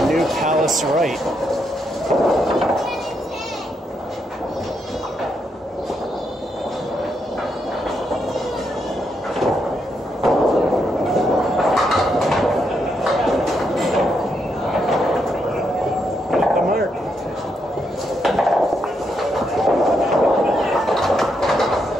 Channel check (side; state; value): both; normal; correlation 0.80